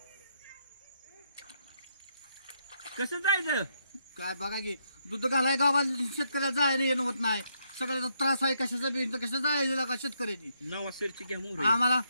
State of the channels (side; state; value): both; inverted; correlation -0.77